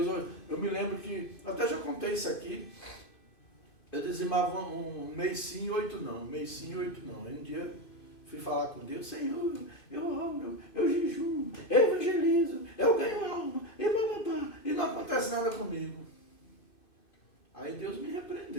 Eu me lembro que, até já contei isso aqui, eu dizimava um mês sim e 8 não. Um mês sim e 8 não. Aí um dia fui falar com Deus, Senhor, eu oro, eu jejum, eu evangelizo, eu ganho alma, e não acontece nada comigo. Aí Deus me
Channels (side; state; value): right; late; 2.5 ms